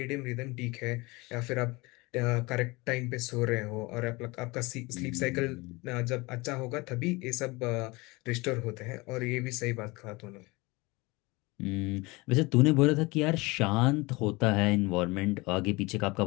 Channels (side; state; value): right; quieter; 23.9 dB